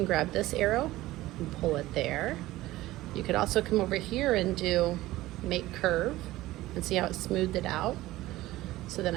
grab this arrow and pull it there. You could also come over here and do make curve and see how it smoothed it out. So then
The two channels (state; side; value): quieter; left; 17.0 dB